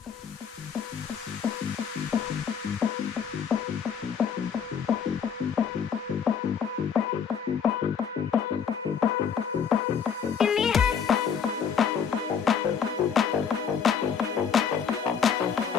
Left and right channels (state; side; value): quieter; right; 7.0 dB